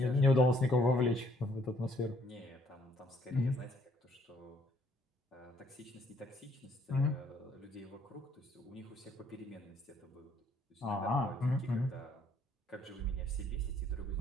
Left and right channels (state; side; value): normal; both; correlation 0.65